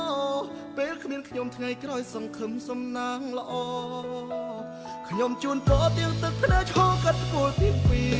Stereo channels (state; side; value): identical; both; correlation 1.00